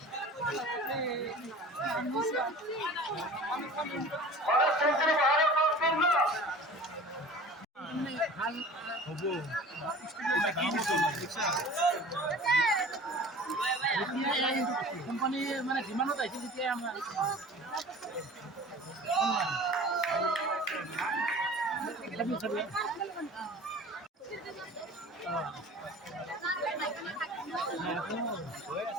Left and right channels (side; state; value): both; normal; correlation 0.41